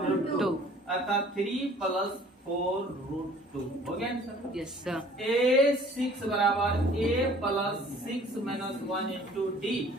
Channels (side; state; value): both; normal; correlation 0.52